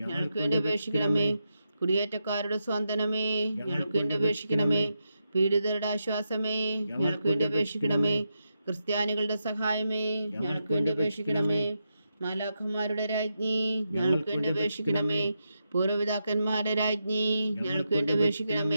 വേണ്ടി അപേക്ഷിക്കണമേ. കുടിയേറ്റക്കാരുടെ സ്വാന്തനമേ ഞങ്ങൾക്ക് വേണ്ടി അപേക്ഷിക്കണമേ. പീഡിതരുടെ ആശ്വാസമേ ഞങ്ങൾക്ക് വേണ്ടി അപേക്ഷിക്കണമേ. ക്രിസ്ത്യാനികളുടെ സഹായമേ ഞങ്ങൾക്ക് വേണ്ടി അപേക്ഷിക്കണമേ. മാലാഖന്മാരുടെ രാജ്ഞി ഞങ്ങൾക്ക് വേണ്ടി അപേക്ഷിക്കണമേ. പൂർവ്വപിതാക്കന്മാരുടെ രാജ്ഞി ഞങ്ങൾക്ക് വേണ്ടി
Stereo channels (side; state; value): both; inverted; correlation -0.86